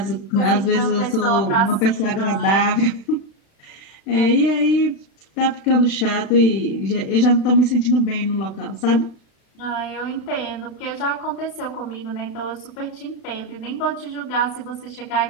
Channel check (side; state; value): right; late; 36 ms